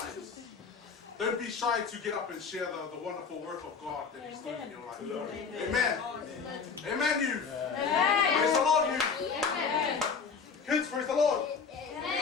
Don't be shy to get up and share the wonderful work of God that He's doing in your life. Amen. Amen, youth. Praise the Lord, youth. Kids, praise the Lord.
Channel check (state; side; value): quieter; right; 5.6 dB